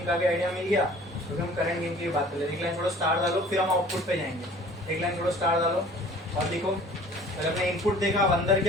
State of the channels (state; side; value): normal; both; correlation 0.49